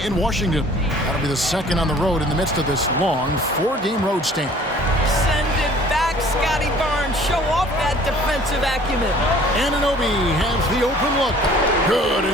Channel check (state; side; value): normal; both; correlation 0.52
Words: in Washington. That'll be the second on the road in the midst of this long 4-game road stand. Send it back, Scotty Barnes. Show off that defensive acumen. Anunoby has the open look. Good,